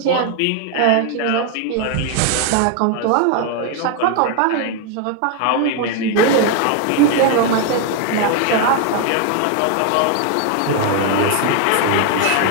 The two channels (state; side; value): different; both; correlation 0.01